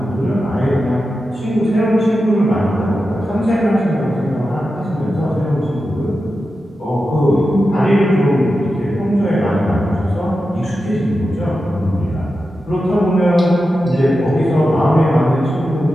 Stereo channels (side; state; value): both; normal; correlation 0.91